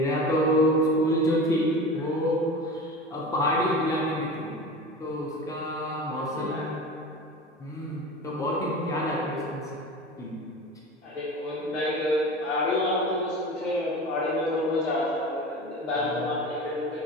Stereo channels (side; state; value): both; normal; correlation 0.32